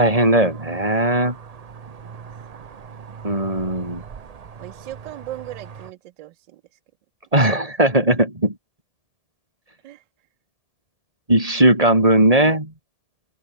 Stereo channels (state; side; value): late; left; 1.8 ms